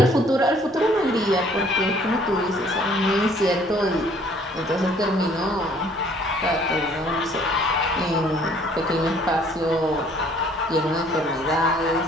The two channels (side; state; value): both; normal; correlation 0.59